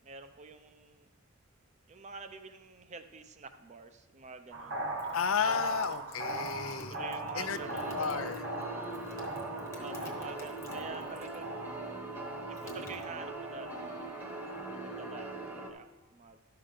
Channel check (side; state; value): both; normal; correlation -0.17